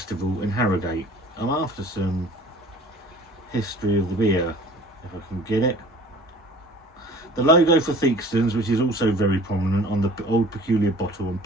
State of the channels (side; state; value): both; normal; correlation 0.47